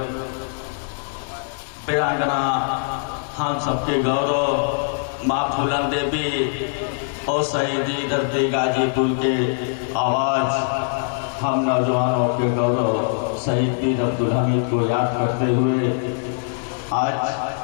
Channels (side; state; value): right; silent; digital silence